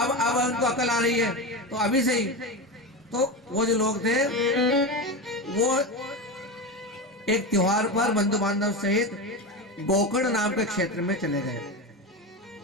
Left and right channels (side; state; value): both; normal; correlation 0.20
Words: उनको अकल आ रही है तो अभी से ही। तो वो जो लोग थे वो एक त्योहार पर बंधु बांधव सहित गोकर्ण नाम के क्षेत्र में चले गए।